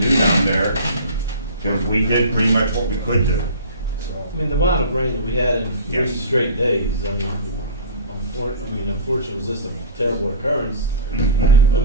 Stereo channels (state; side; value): inverted; both; correlation -0.36